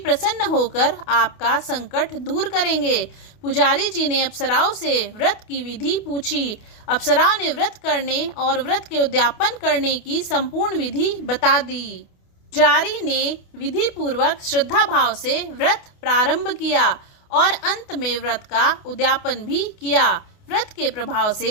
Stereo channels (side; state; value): right; late; 28 ms